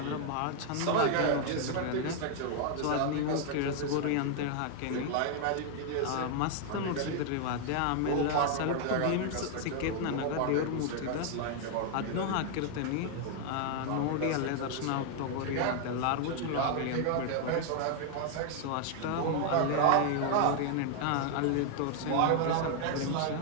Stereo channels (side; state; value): both; different; correlation 0.00